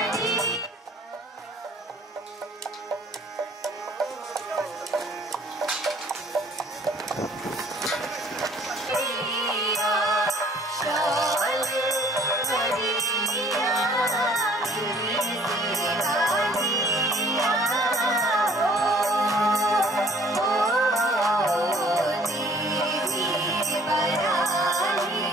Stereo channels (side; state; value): both; normal; correlation 0.56